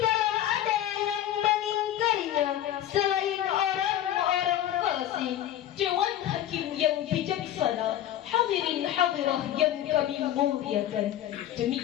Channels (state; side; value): quieter; right; 11.8 dB